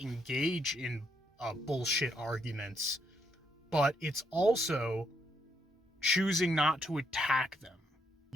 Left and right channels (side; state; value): both; normal; correlation 0.75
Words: engage in bullshit arguments, but it's also choosing not to attack them.